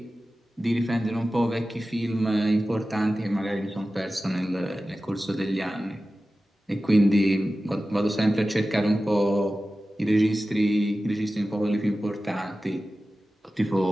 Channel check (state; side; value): normal; both; correlation 0.95